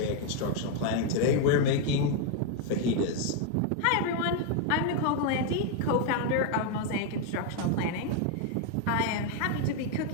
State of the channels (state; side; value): different; both; correlation 0.00